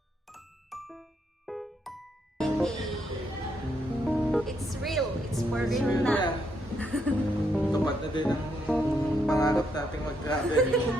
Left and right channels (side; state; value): both; normal; correlation 0.76